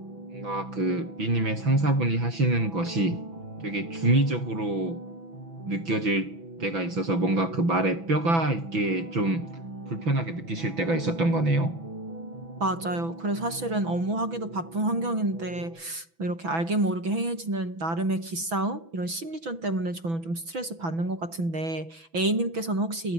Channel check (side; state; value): left; late; 6.0 ms